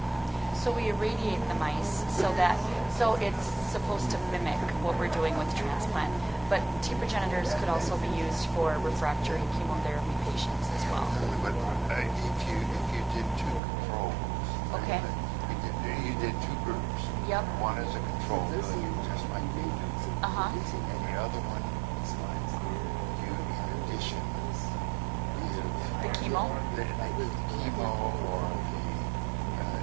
So we irradiate the mice so it's supposed to mimic what we're doing with transplant. But T progenitors could also be used for refractory chemotherapy patients as well. But if you did two controls, Okay. you did two groups. Yep. One is a control, just like we do, Uh-huh. and the other one, you in addition The chemo? the chemo or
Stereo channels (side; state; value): left; drops out; at 13.6 s